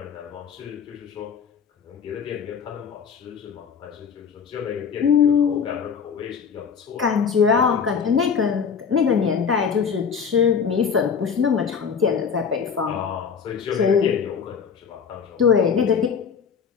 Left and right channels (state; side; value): quieter; right; 6.5 dB